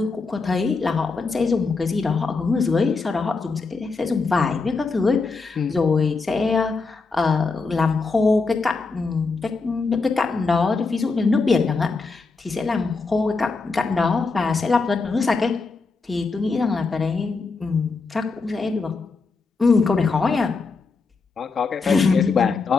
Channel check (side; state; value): right; quieter; 4.2 dB